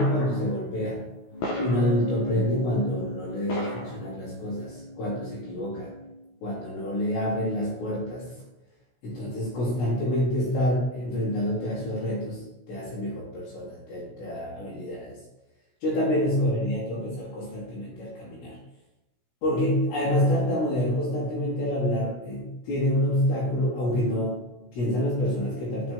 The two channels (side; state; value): right; late; 16 ms